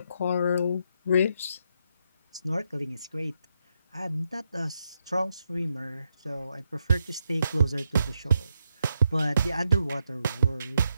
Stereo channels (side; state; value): both; inverted; correlation -0.81